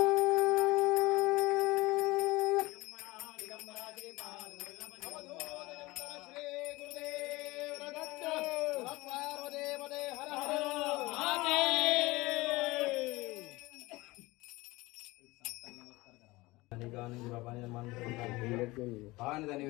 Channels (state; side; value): quieter; right; 21.2 dB